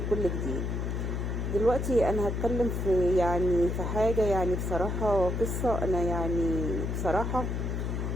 كل جديد. دلوقتي انا هتكلم في حاجة، بصراحة قصة. انا بصراحة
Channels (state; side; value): noise; left; hum, 1 dB below the sound